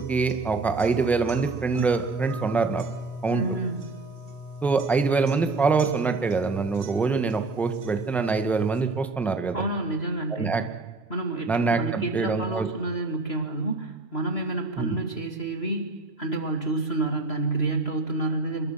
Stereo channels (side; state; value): left; quieter; 3.6 dB